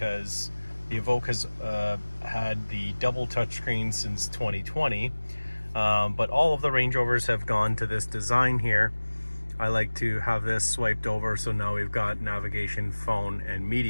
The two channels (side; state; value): both; inverted; correlation -1.00